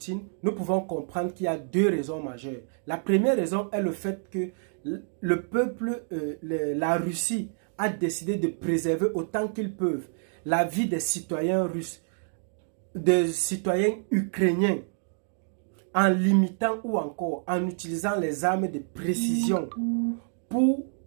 nous pouvons comprendre qu'il y a deux raisons majeures. La première raison est le fait que le peuple, la Russie, a décidé de préserver autant qu'ils peuvent la vie des citoyens russes, des citoyens ukrainiens, en limitant ou encore en utilisant les armes de précision pour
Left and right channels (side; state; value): left; silent; 59 dB below the other